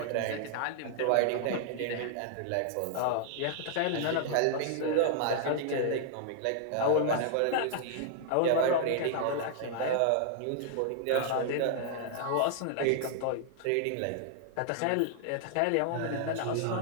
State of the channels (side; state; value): both; different; correlation 0.00